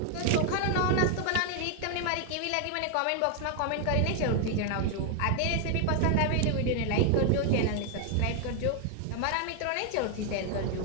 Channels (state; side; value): different; both; correlation 0.00